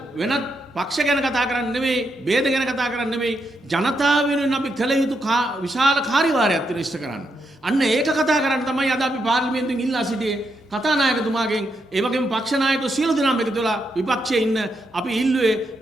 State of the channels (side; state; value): both; normal; correlation 0.81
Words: වෙනත් පක්ෂ ගැන කතා කරන්න නෙමෙයි, ભેද ගැන කතා කරන්න නෙමෙයි, ජනතාව වෙනුවෙන් අපි කළ යුතු විශාල කාර්යභාරයක් තියෙන ඉෂ්ට කරන්න. අන්න ඒක කතා කරන්න තමයි අද අපි පාර්ලිමේන්තුවෙන් ඉල්ලා සිටියේ කතානායකතුමාගෙන්. ඒ වගේම පක්ෂ ናයකයෝ සියලු දෙනාම එකතු වෙලා විපක්ෂයේ ඉන්න අපි ඉල්ලුවේ